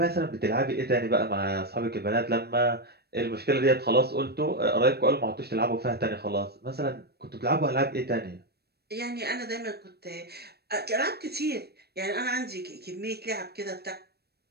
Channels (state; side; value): late; left; 0.47 ms